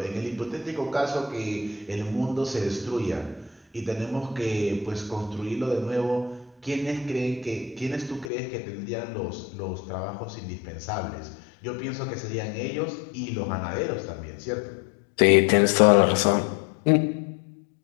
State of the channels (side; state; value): right; drops out; at 8.3 s